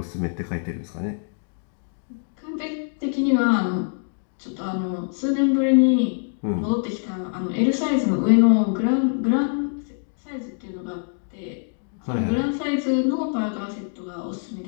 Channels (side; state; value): right; silent; 62 dB below the other